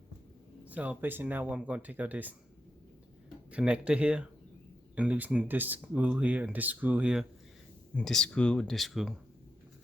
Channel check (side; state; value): both; normal; correlation 0.85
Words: So basically now I'm gonna take out this connector here and loosen this screw here and this screw here and this screw and this screw.